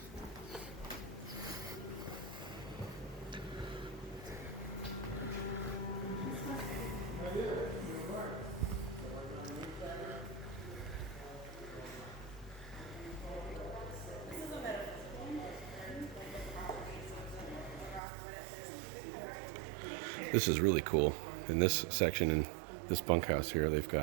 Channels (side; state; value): left; drops out; at 18.0 s